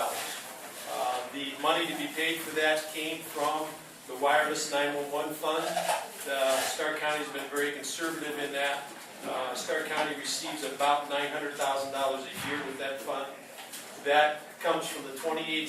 The money to be paid for that came from the wireless 911 fund. Stark County has been very conservative in that. Stark County receives about $900,000 a year with that fund. That comes from the 28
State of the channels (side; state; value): both; identical; correlation 1.00